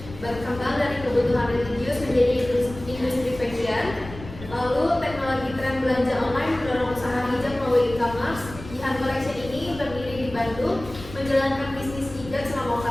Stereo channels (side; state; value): left; noise; rumble, 14 dB below the sound